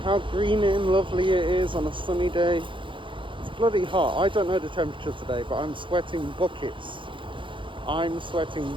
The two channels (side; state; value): left; late; 0.24 ms